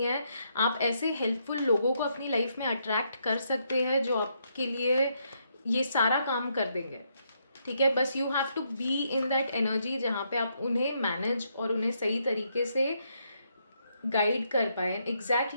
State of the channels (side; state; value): both; inverted; correlation -0.76